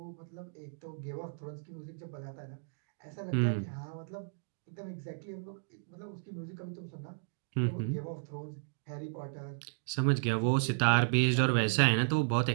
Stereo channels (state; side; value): silent; left; digital silence